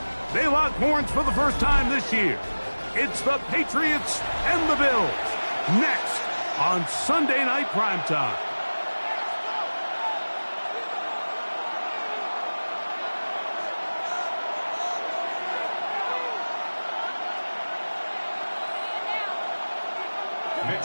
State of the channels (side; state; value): both; inverted; correlation -1.00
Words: They lock horns for the first time this year. It's the Patriots and the Bills. Next on Sunday Night Primetime.